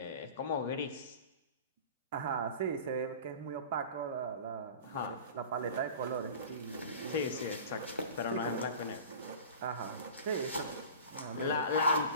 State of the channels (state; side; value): inverted; both; correlation -0.38